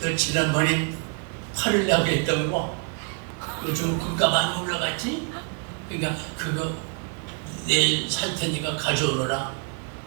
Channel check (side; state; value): left; quieter; 37.9 dB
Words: 지난번에 팔을 내고 했던 거 요즘 금가 많이 올라갔지? 그러니까 그거 내일 살 테니까 가져오너라.